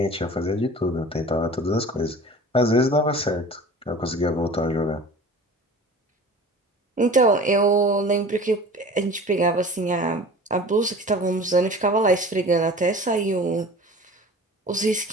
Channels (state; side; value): normal; both; correlation 0.41